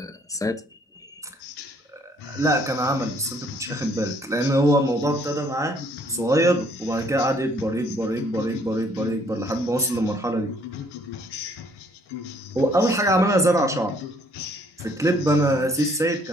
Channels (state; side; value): normal; both; correlation 0.63